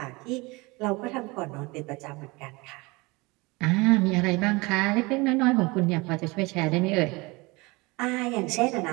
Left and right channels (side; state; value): left; quieter; 24.7 dB